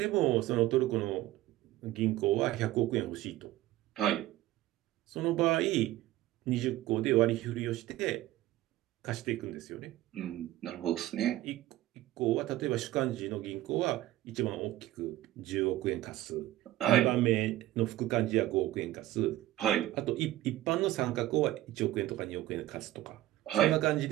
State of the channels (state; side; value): quieter; left; 15.6 dB